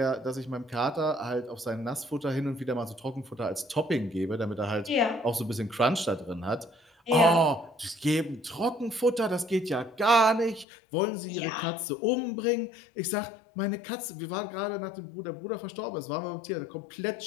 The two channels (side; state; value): right; drops out; at 10.7 s